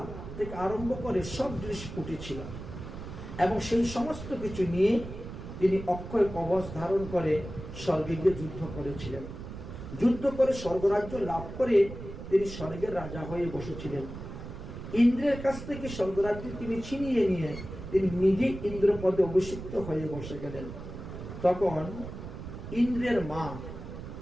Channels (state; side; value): noise; right; rumble, 10 dB below the sound